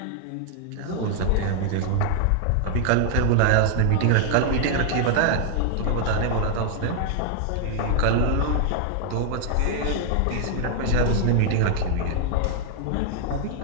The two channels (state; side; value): different; both; correlation 0.00